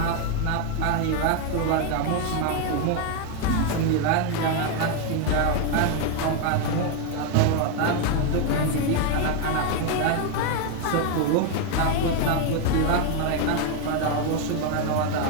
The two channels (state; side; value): different; both; correlation 0.01